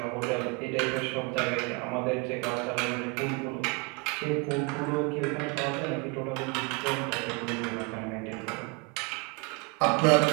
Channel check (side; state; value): left; quieter; 28.4 dB